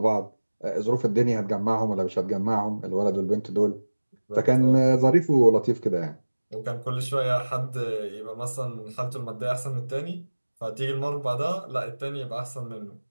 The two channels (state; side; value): inverted; both; correlation -1.00